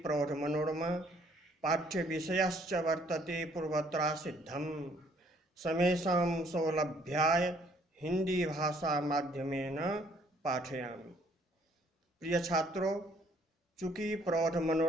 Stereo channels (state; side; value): normal; both; correlation 0.63